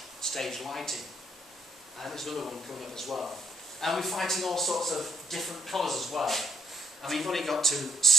stage lighting. And there's another one coming up as well. And we're fighting all sorts of different colours as well. I mean, you've only got to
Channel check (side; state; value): both; normal; correlation 0.69